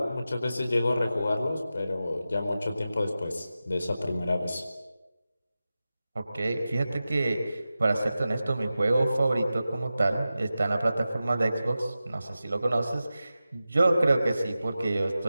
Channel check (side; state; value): both; inverted; correlation -0.93